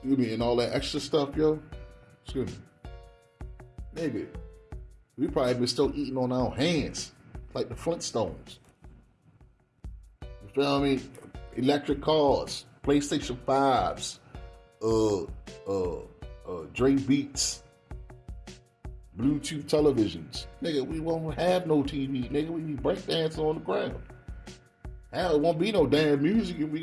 me, and all that extra stuff, yo. Excuse me. Nigga, we probably been still eating on our hands like the Flintstones. You feel me? Electric cars, PlayStation 5s, Dre Beats, Bluetooth televisions. Nigga, we won't have no TV. Nigga, we be breakdancing on the ground. Hell, it won't be no damn music. If we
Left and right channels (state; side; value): identical; both; correlation 1.00